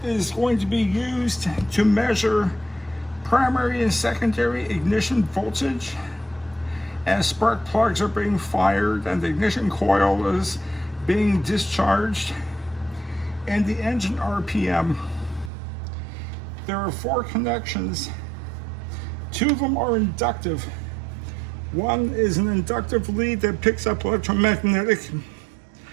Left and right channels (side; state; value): left; drops out; at 15.5 s